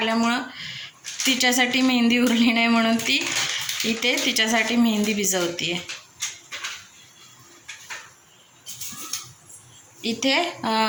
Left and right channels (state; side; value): identical; both; correlation 1.00